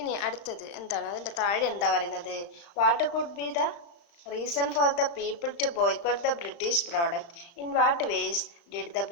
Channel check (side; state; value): right; late; 35 ms